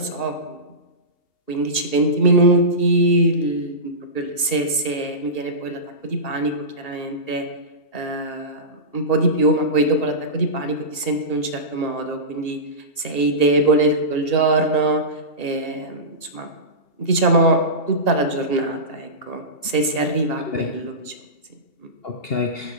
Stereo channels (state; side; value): late; right; 2.8 ms